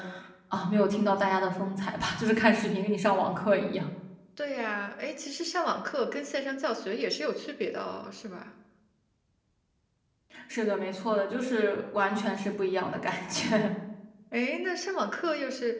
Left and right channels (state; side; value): identical; both; correlation 1.00